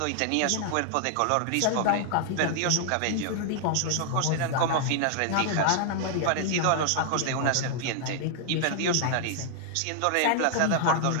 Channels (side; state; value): both; different; correlation 0.00